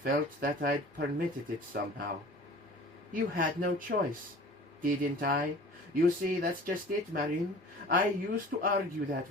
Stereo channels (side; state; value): both; normal; correlation 0.44